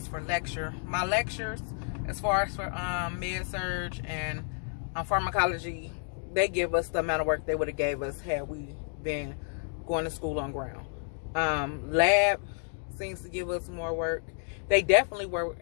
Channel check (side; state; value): right; silent; 57 dB below the other